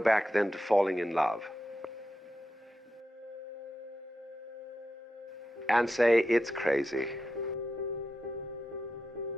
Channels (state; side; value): normal; both; correlation 0.88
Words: then to falling in love and say it's crazy.